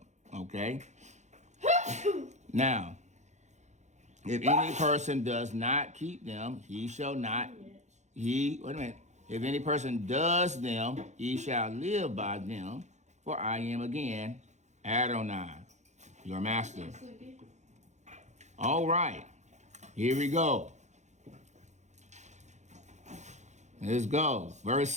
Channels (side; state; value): left; late; 0.34 ms